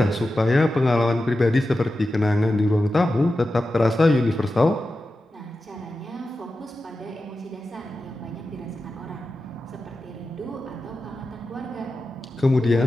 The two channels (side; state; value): both; normal; correlation 0.92